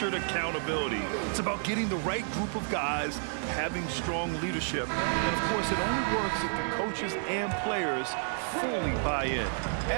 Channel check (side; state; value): left; silent; digital silence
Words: accountability. It's about getting the right group of guys, having strong leadership. And of course, it only works if the coaches and players fully buy in.